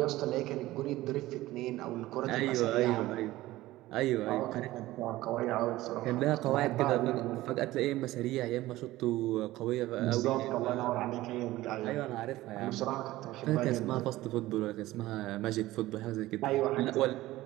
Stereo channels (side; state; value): left; quieter; 17.0 dB